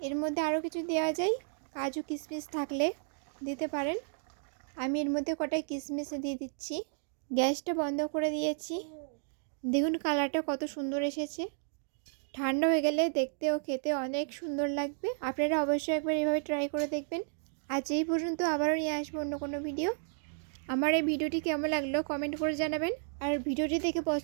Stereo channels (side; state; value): left; silent; digital silence